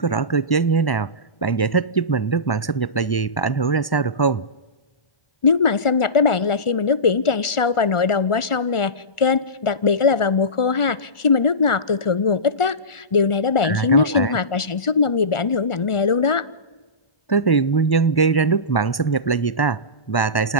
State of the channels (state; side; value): late; right; 1.4 ms